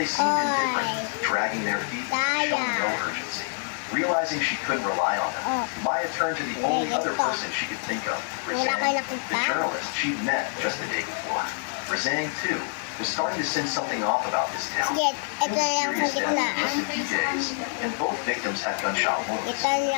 seemed indifferent, dragging their feet and showing no urgency. Realizing she couldn't rely on them, Maya turned to the only other person she could think of, Wala Razang, kayo nakita? the journalist she'd met just the day before. Razang, too, was starting to sense something off about this town. Sige, Two ito na lang sa mysterious deaths in gitnaan. just a few days, and both victims had gunshot wounds. Ito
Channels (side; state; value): right; silent; 61 dB below the other